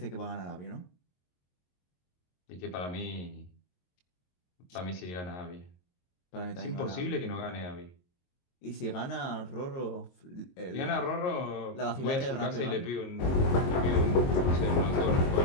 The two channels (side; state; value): right; late; 22 ms